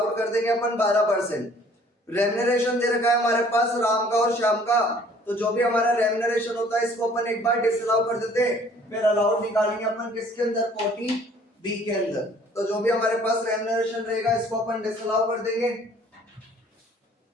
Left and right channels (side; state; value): both; normal; correlation 0.55